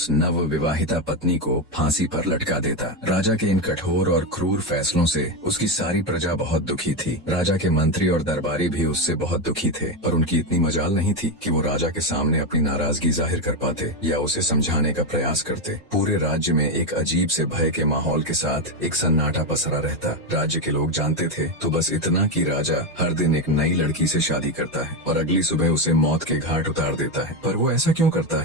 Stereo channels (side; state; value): both; normal; correlation 0.10